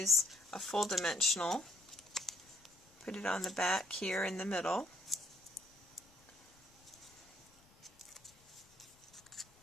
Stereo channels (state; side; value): noise; left; rumble, 29 dB below the sound